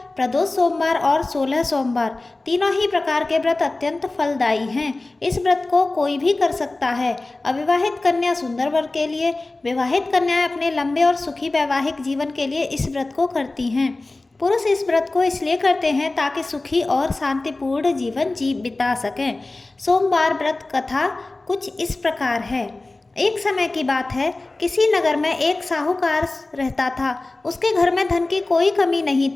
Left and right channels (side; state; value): right; quieter; 3.1 dB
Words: प्रदोष सोमवार और 16 सोमवार। तीनों ही प्रकार के व्रत अत्यंत फलदायी हैं। इस व्रत को कोई भी कर सकता है। अविवाहित कन्या सुंदर वर के लिए, विवाहित कन्याएं अपने लंबे और सुखी वैवाहिक जीवन के लिए इस व्रत को करती हैं। पुरुष इस व्रत को इसलिए करते हैं ताकि सुखी और शांतिपूर्ण जीवन बिता सकें। सोमवार व्रत कथा कुछ इस प्रकार है। एक समय की बात है, किसी नगर में एक साहूकार रहता था। उसके घर में धन की कोई कमी नहीं